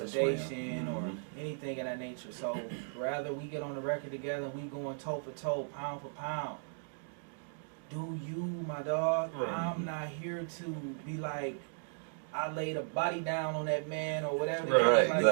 him. or Mhm. anything of that nature. So rather we get on the record together and we going toe for toe, pound for pound. Do you, my dog? Right. I'm not here to be like, I laid a body down on that man or whatever. Right,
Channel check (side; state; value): left; silent; digital silence